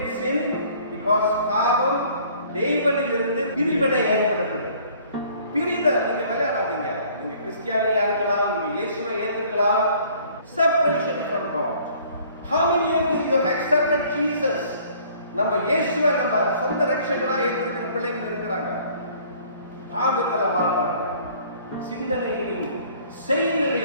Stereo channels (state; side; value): inverted; both; correlation -0.55